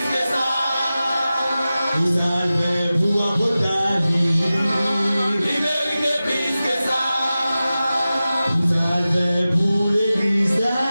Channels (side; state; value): both; inverted; correlation -0.95